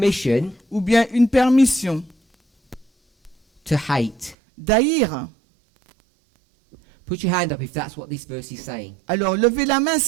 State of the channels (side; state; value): left; drops out; at 4.4 s